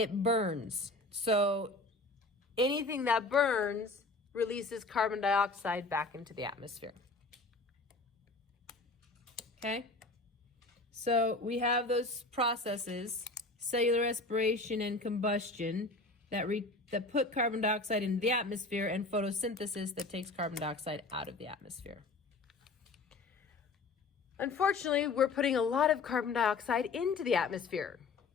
burns. So anything that burns releases carbon dioxide back into the atmosphere. Okay? So we have those processes, cellular respiration and combustion, that put carbon dioxide into the atmosphere, and photosynthesis that takes carbon dioxide out of the atmosphere. Unfortunately, we're putting a lot of carbon dioxide into the atmosphere,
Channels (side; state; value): right; quieter; 3.4 dB